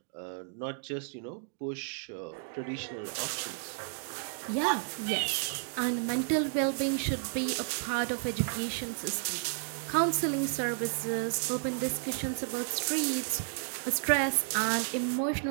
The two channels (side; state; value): left; silent; 56 dB below the other